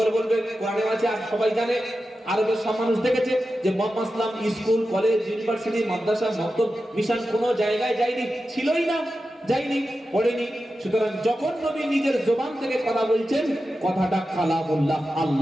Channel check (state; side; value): normal; both; correlation 0.92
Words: বলবে কোরআনে আছে, আর সবাই জানে। আরবের সব মানুষ দেখেছে যে মুহাম্মদ সাল্লাল্লাহু আলাইহি ওয়াসাল্লাম স্কুল, কলেজ, ইউনিভার্সিটি, মাদ্রাসা, মক্তব, মিশন কোনো জায়গায় যায়নি, ছিলই না, যায়নি, পড়েনি। সুতরাং যখন নবী নিজের জবান থেকে কথা বলছেন, কথাটা কালামুল্লাহ,